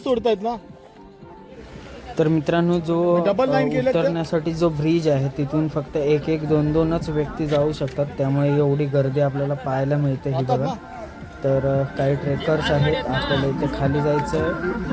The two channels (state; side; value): identical; both; correlation 1.00